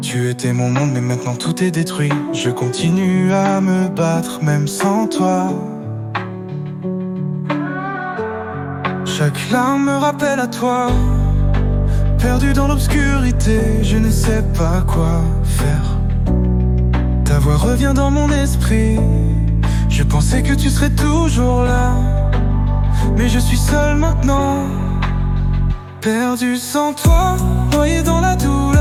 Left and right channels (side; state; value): both; identical; correlation 1.00